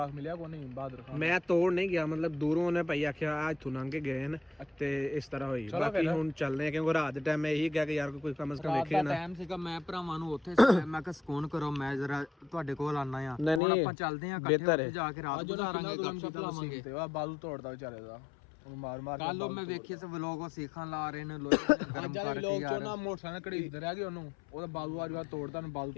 ਮਿਲਿਆ ਕੋਈ ਨਹੀਂ ਬਹਾਦਰ ਖਾਨ? ਮੈਂ ਤੋੜ ਨਹੀਂ ਗਿਆ ਮਤਲਬ ਦੂਰੋਂ ਉਹਨੇ ਭਾਈ ਆਖਿਆ ਆ ਇੱਥੋਂ ਲੰਘ ਕੇ ਗਏ ਨੇ ਤੇ ਇਸ ਤਰ੍ਹਾਂ ਹੋਈ ਬਾਕੀ ਹੁਣ ਚੱਲਨੇ ਆ ਕਿਉਂਕਿ ਰਾਤ ਦੇ ਟਾਈਮ ਮੈਂ ਇਹੀ ਕਿਹਾ ਕਿ ਯਾਰ ਕੋਈ ਕਮ ਸੇ ਕਮ ਵੇਖੇ ਨਾ ਟਾਈਮ ਸੀਗਾ, ਮੈਂ ਭਰਾਵਾਂ ਨੂੰ ਉੱਥੇ ਸੀ, ਮੈਂ ਕਿਹਾ ਸਕੂਨ ਕਰੋ, ਮੈਂ ਜਰਾ ਤੁਹਾਡੇ ਕੋਲ ਆਣਾ ਆ। ਹੁਣ ਆਪਾਂ ਚੱਲਦੇ ਆ ਇਕੱਠੇ ਉੱਥੇ ਜਾ ਕੇ ਰਾਤ ਗੁਜ਼ਾਰਾਂਗੇ, ਗੱਪਸ਼ਪ ਲਾਵਾਂਗੇ। ਤੇ ਉਹ ਬਾਲੂ ਤੋੜਦਾ ਵਿਚਾਰੇ ਦਾ ਉਹਨੂੰ ਮਾਰ ਮਾਰ ਕੱਲ ਉਹ ਮੈਂ ਵੇਖੀ ਸੀ ਵਲੋਗ, ਉਹ ਸੀਖਾਂ ਲਾ ਰਹੇ ਨੇ ਲੋਕ ਗਰਮ ਕਰਕੇ ਯਾਰ। ਨਾ ਮੋਟਰਸਾਈਕਲ ਘੜੀਸਦੇ ਰਹਿ ਗਏ ਉਹਨੂੰ, ਉਹਦਾ ਬਾਲੂ ਅੱਜ ਬਾਅਦ ਤੋੜਦਾ ਨੂੰ ਬਾਲੂ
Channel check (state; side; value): drops out; right; at 13.6 s